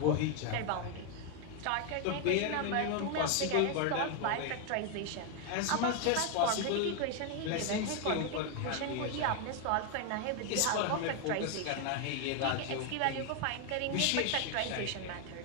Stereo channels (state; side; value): different; both; correlation 0.01